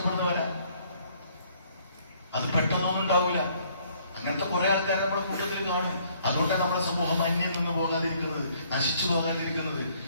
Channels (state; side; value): inverted; both; correlation -0.64